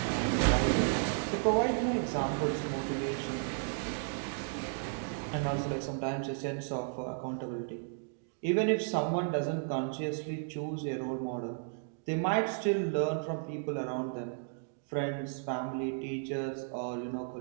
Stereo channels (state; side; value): silent; left; digital silence